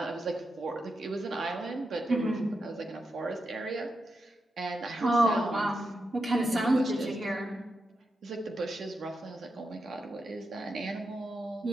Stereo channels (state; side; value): normal; both; correlation 0.87